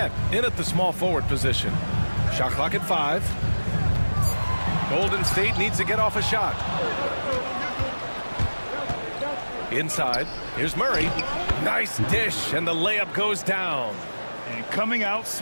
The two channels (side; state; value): both; inverted; correlation -1.00